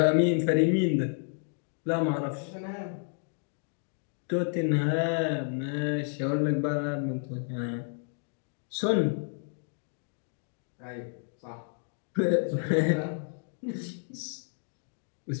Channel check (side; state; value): right; silent; 57 dB below the other